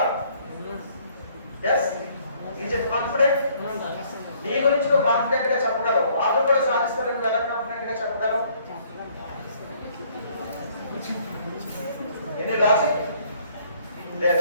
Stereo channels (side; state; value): both; inverted; correlation -0.63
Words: Yes, is it confident? నీ గురించి నువ్వు కాన్ఫిడెంట్ గా చెప్పగలవు. వాళ్ళు కూడా సాధిస్తారని ఎలా కాన్ఫిడెంట్ గా చెప్పగలవు? ఎన్ని లాజిక్